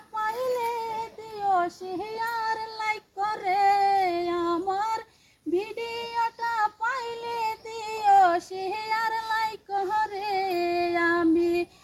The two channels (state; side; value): identical; both; correlation 1.00